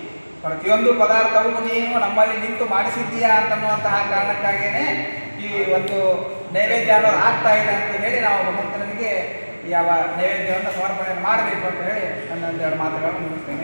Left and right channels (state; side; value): inverted; both; correlation -1.00